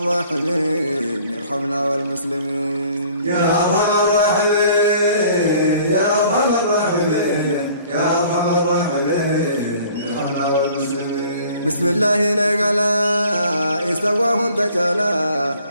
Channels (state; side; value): inverted; both; correlation -0.53